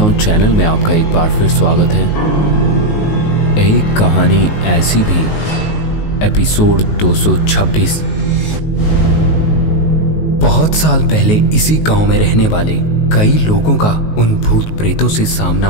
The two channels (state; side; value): late; right; 19 ms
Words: चैनल में आपका एक बार फिर स्वागत है। एक कहानी ऐसी भी, एपिसोड 226। बहुत साल पहले इसी गांव में रहने वाले कई लोगों का उन भूत प्रेतों से सामना